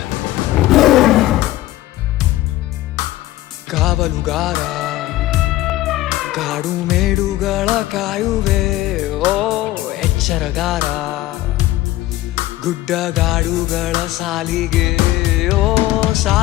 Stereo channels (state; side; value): quieter; right; 16.1 dB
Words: ಕಾವಲುಗಾರ ಕಾಡು ಮೇಡುಗಳ ಕಾಯುವೆ ಓ ಎಚ್ಚರಗಾರ, ಗುಡ್ಡಗಾಡುಗಳ ಸಾಲಿಗೆ ಓ